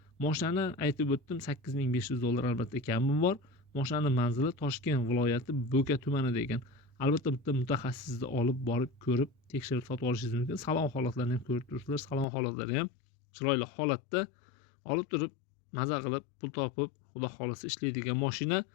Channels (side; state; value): right; drops out; at 12.2 s